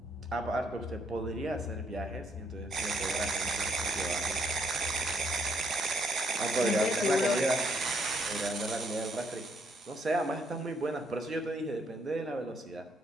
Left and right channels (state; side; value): normal; both; correlation 0.70